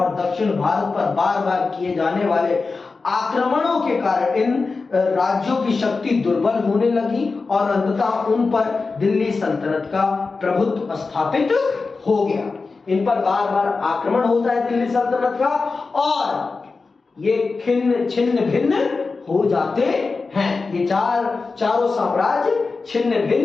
दक्षिण भारत पर बार बार किए जाने वाले आक्रमणों के कारण इन राज्यों की शक्ति दुर्बल होने लगी और अंततः उन पर दिल्ली सल्तनत का प्रभुत्व स्थापित हो गया। इन पर बार बार आक्रमण होता है दिल्ली सल्तनत का, और ये छिन्न भिन्न हो जाते हैं। ये चारों साम्राज्य छिन्न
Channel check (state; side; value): quieter; right; 4.2 dB